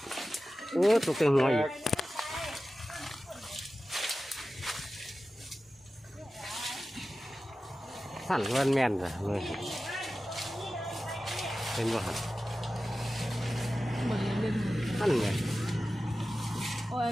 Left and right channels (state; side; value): normal; both; correlation 0.95